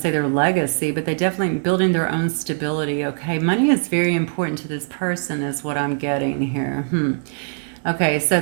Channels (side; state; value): left; silent; digital silence